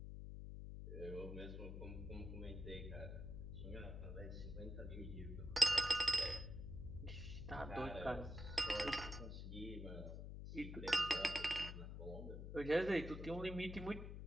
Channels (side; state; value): left; noise; hum, 7 dB below the sound